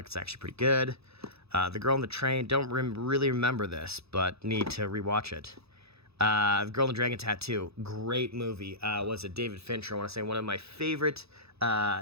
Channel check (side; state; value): left; late; 0.78 ms